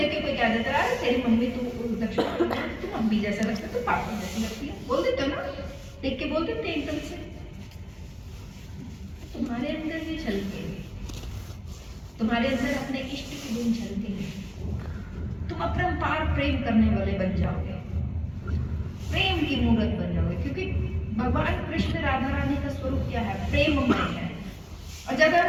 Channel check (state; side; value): identical; both; correlation 1.00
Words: के कोई कह देता है तेरी मम्मी तू दक्षिण तू मम्मी जैसा लगता है, तू पापा जैसी लगती है, बोल देते हो ना, देख के बोल देते हैं एकदम से। तुम्हारे अंदर भी झलकेंगे, तुम्हारे अंदर अपने इष्ट के गुण झलकेंगे, तुम अपरंपार प्रेम करने वाले बन जाओगे, प्रेम की मूर्त बन जाओगे। क्योंकि भगवान कृष्ण राधा रानी का स्वरूप क्या है, प्रेममय है। और ज्यादा